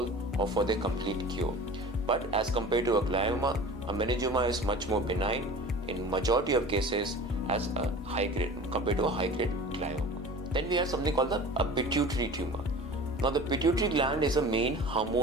or for their complete cure. But as compared to a glioma, a meningioma is much more benign in majority of cases as a high grade compared to a high grade glioma. Then we have something called a pituitary tumor. Now, the pituitary gland is a main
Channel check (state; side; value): normal; both; correlation 0.39